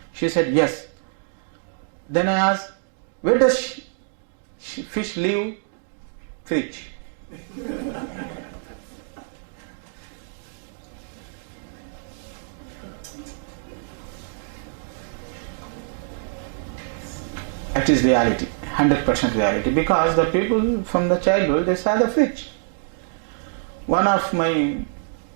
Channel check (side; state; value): left; silent; digital silence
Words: She said, yes. Then I asked, where does fish live? Fridge. I That is reality, 100% reality. Because the people from the childhood, they saw the fridge. One of my